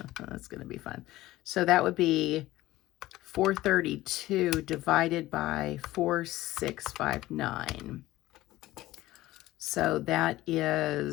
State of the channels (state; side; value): quieter; right; 16.7 dB